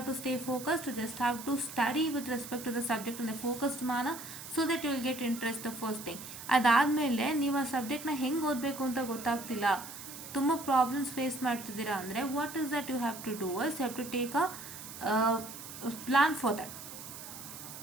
stay focused, you just have to study with respect to the subject in a focused manner, so that you will get interest, the first thing. ಅದಾದಮೇಲೆ ನೀವು ಆ ಸಬ್ಜೆಕ್ಟ್ನ ಹೆಂಗೆ ಓದಬೇಕು ಅಂತ ಗೊತ್ತಾಗ್ತಿಲ್ಲ, ತುಂಬ ಪ್ರಾಬ್ಲಮ್ಸ್ ಫೇಸ್ ಮಾಡ್ತಿದ್ದೀರಾ ಅಂದರೆ, what is that you have to do is, you have to take a plan for that.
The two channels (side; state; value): right; noise; hiss, 12 dB below the sound